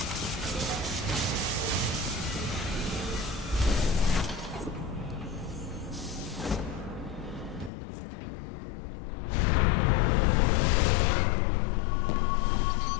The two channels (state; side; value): drops out; right; at 7.7 s